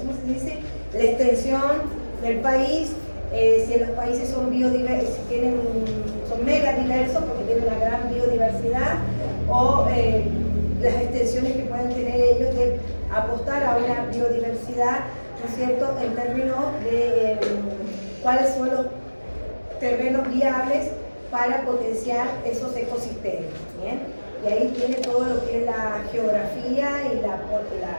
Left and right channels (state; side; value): inverted; both; correlation -1.00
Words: se dice? La extensión del país, si los países son biodiversos, si son mega diversos porque tienen una gran biodiversidad, o las extensiones que pueden tener ellos de apostar a una biodiversidad, ¿no es cierto?, en términos de cuáles son los terrenos viables para potenciar esos ecosistemas. ¿Bien? Y ahí tiene todo lo que es la geografía y